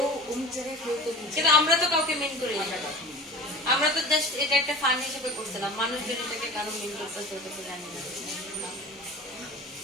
অমুক জায়গায় কেউ তো কিন্তু আমরা তো কাউকে মেন করি আমরা তো জাস্ট এটা একটা ফান হিসেবে করছিলাম মানুষজন এটাকে কারো মেন করতেছে ওটা তো জানি না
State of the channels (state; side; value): normal; both; correlation 0.37